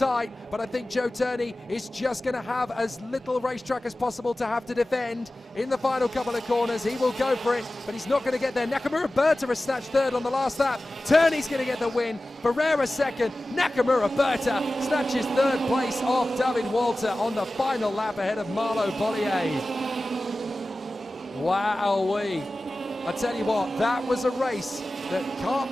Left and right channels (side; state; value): both; normal; correlation 0.96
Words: but I think Joe Turney is just going to have as little racetrack as possible to have to defend. In the final couple of corners, he will go for it, but he's not going to get there. Nakamura Berta has snatched 3rd on the last lap. Turney's going to get the win. Ferreira 2nd. Nakamura Berta snatches 3rd place off David Walter on the final lap ahead of Marlo Bollier. Wowee. I tell you what, that was a race that Kart